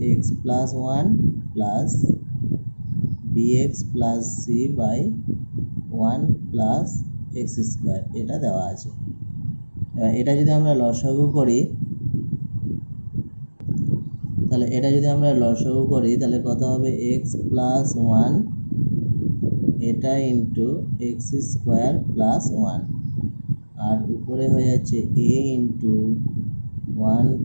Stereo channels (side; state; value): both; inverted; correlation -1.00